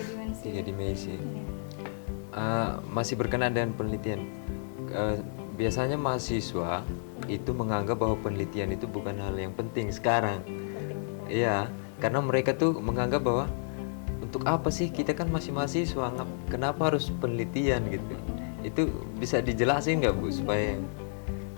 dimensi. 3 dimensi. Iya. Masih berkenaan dengan penelitian. Biasanya mahasiswa itu menganggap bahwa penelitian itu bukan hal yang penting sekarang. Iya, karena mereka tuh menganggap bahwa untuk apa sih kita kan masih mahasiswa, kenapa harus penelitian gitu. Itu bisa dijelasin nggak Bu supaya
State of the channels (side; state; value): right; silent; digital silence